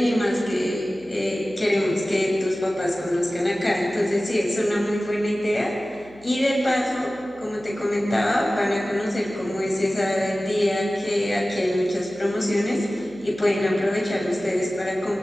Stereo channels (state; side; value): noise; right; hum, 27 dB below the sound